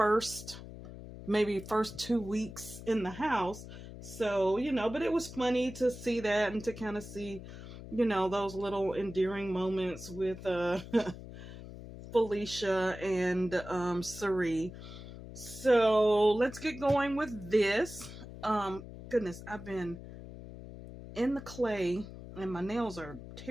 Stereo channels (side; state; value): left; noise; hum, 13 dB below the sound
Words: maybe first 2 weeks in the house. So, but it was funny to see that and to kind of see, those little endearing moments with Felicia and Sari. So let's get going with this. Goodness, I've been in the clay and my nails are